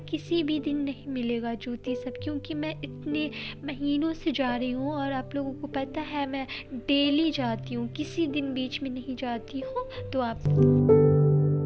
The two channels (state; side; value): identical; both; correlation 1.00